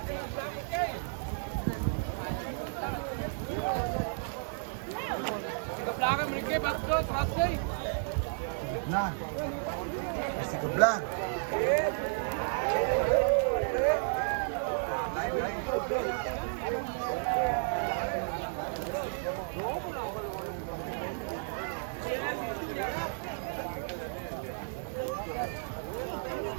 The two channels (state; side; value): silent; left; digital silence